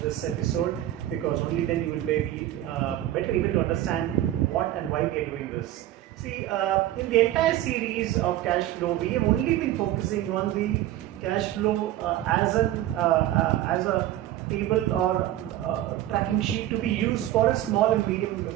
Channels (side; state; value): left; quieter; 13.7 dB